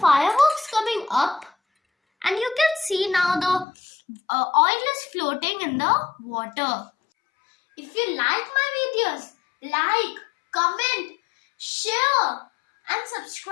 coming up? And you can see now the oil is floating in the water. If you like my videos, like, comment, share and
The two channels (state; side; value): drops out; right; at 3.7 s